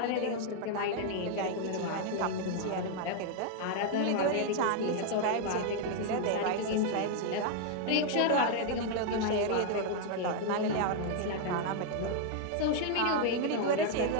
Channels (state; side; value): different; both; correlation 0.00